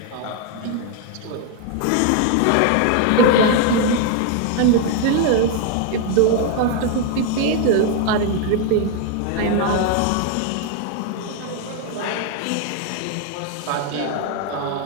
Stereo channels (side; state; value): both; different; correlation 0.01